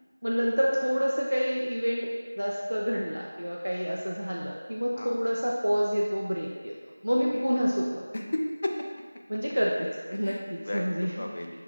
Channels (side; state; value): both; inverted; correlation -0.99